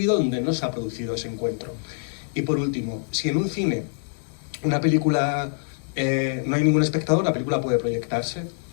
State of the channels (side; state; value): right; silent; digital silence